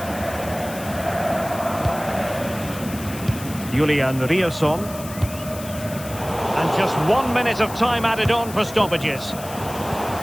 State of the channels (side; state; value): left; noise; hiss, 14 dB below the sound